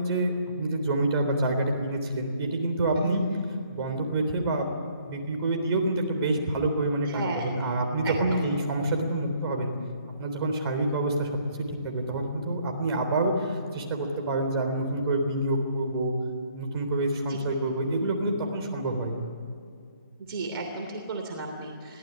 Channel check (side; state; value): both; inverted; correlation -0.64